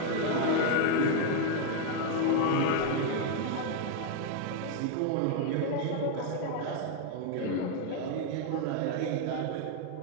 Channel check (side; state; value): both; different; correlation 0.00